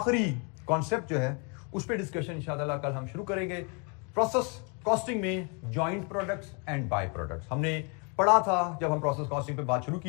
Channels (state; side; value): quieter; right; 34.5 dB